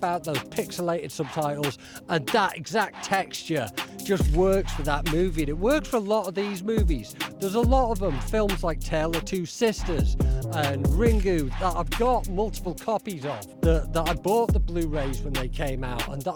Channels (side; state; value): both; identical; correlation 1.00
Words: those pixelated subtitles and that exact texture just works for that movie, and it works for a lot of these movies. There's a lot of them, films like Tale of Two Sisters and Ringu, that I've got multiple copies of, that I bought the Blu-rays when they came out, and that